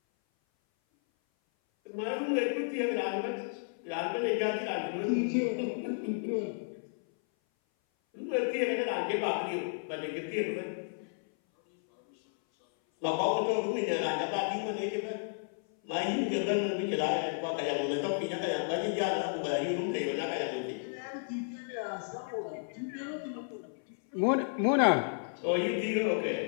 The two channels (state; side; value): silent; right; 56 dB below the other